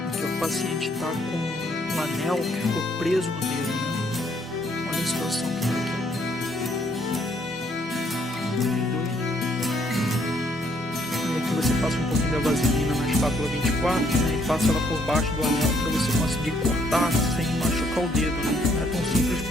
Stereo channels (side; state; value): both; normal; correlation 0.68